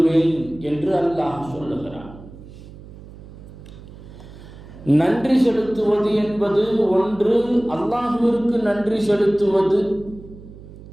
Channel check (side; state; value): right; noise; hum, 17 dB below the sound